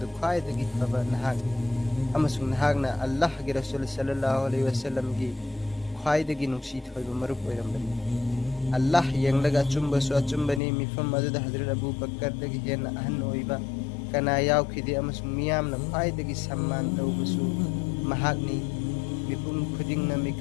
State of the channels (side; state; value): right; drops out; at 10.6 s